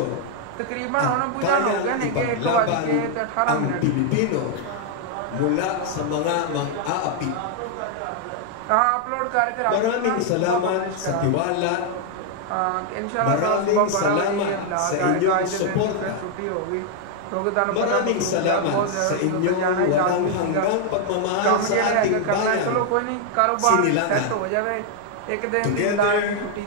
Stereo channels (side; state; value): both; different; correlation 0.00